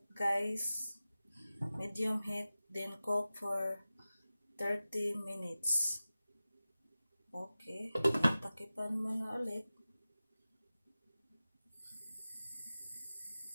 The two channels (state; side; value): inverted; both; correlation -0.96